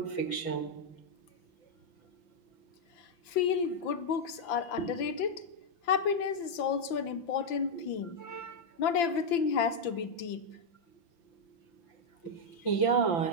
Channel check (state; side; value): late; right; 5.9 ms